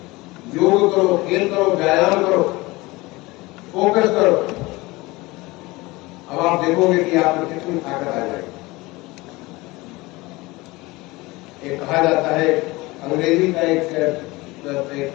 योग करो, खेल करो, व्यायाम करो, फोकस करो। अब आप देखोगे कि आप में कितनी ताकत आ जाएगी। एक कहा जाता है, अंग्रेजी का एक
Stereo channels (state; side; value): quieter; right; 21.8 dB